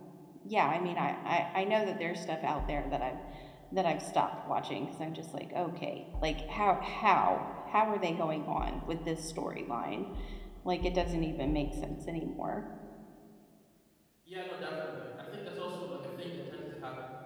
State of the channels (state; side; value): identical; both; correlation 1.00